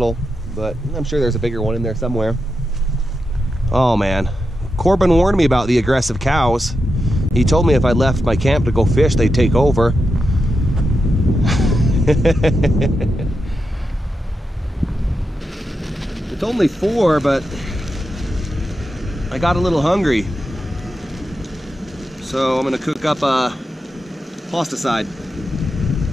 but I'm sure there's a bigger one in there somewhere. Oh man, Korbin warned me about the aggressive cows. He told me if I left my camp to go fish, they'd take over. It's only 4, but I got a little hungry. So I'm gonna cook up a pasta side.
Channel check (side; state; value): both; normal; correlation 0.87